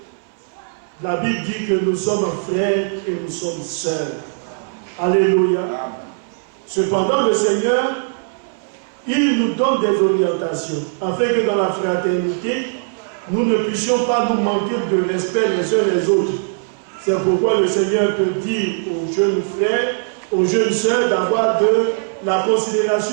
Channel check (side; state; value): left; silent; 61 dB below the other